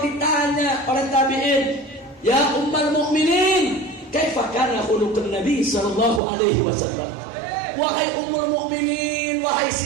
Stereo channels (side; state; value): left; drops out; at 6.2 s